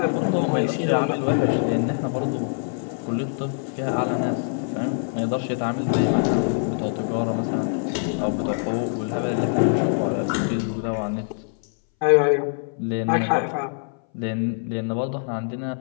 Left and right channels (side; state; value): right; silent; 60 dB below the other